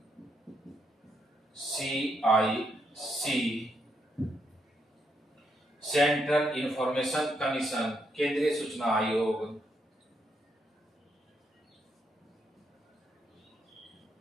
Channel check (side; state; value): both; normal; correlation 0.78